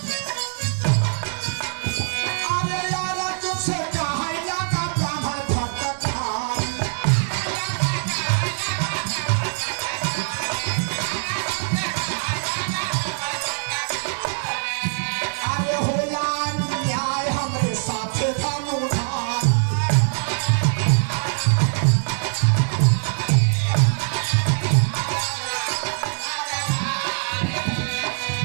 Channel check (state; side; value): silent; left; 63 dB below the other